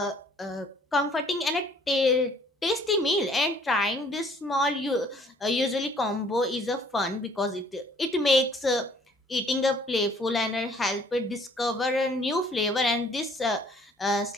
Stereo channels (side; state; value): both; normal; correlation 0.58